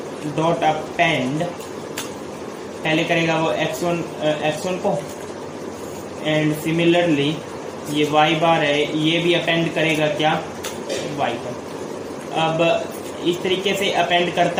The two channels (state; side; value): identical; both; correlation 1.00